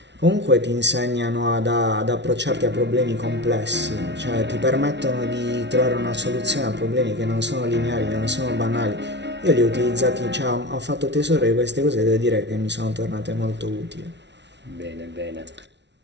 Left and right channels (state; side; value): late; left; 0.51 ms